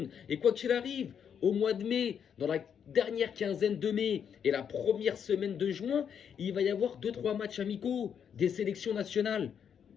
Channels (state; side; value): quieter; right; 7.9 dB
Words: Et quoi qu'il arrive, au mois de mai, dans la dernière quinzaine de mai et la première semaine de juin, il va y avoir 2-3 matchs amicaux des sélections nationales.